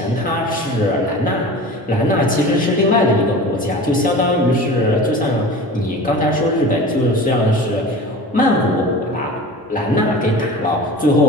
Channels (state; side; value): normal; both; correlation 0.36